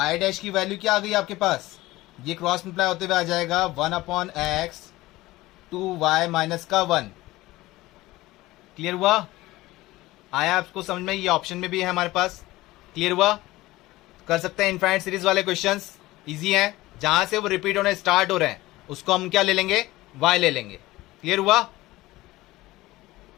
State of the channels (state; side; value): quieter; right; 18.4 dB